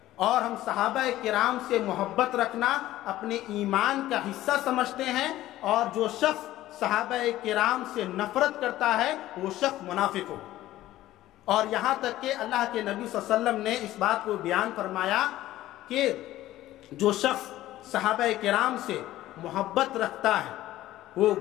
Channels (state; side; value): quieter; right; 15.0 dB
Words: اور ہم صحابہ کرام سے محبت رکھنا اپنے ایمان کا حصہ سمجھتے ہیں، اور جو شخص صحابہ کرام سے نفرت کرتا ہے وہ شخص منافق ہو۔ اور یہاں تک کہ اللہ کے نبی صلی اللہ علیہ وسلم نے اس بات کو بیان فرمایا کہ جو شخص صحابہ کرام سے محبت رکھتا ہے وہ